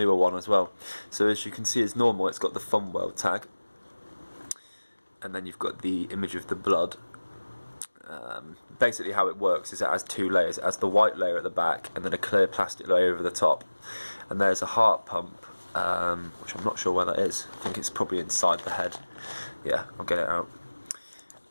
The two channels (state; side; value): inverted; both; correlation -1.00